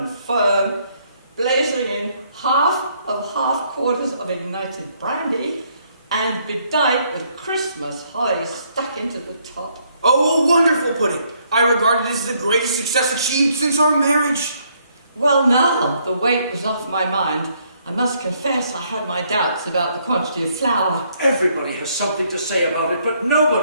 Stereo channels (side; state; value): both; inverted; correlation -0.69